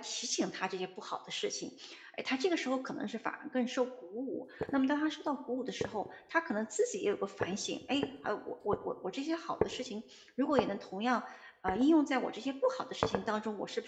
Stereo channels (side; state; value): both; identical; correlation 1.00